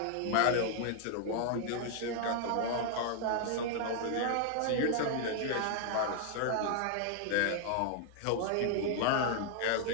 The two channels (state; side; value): different; both; correlation 0.00